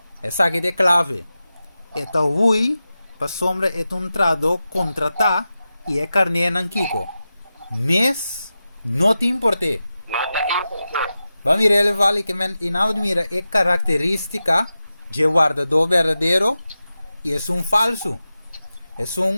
Essa aqui é clave. Está ui, para sombra, é trado contratar e é carne não kiko. Mas, não te importe. Vamos mirar, ele vale que mira é característica de guardador verdadeiro e é falso. É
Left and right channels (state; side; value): inverted; both; correlation -0.93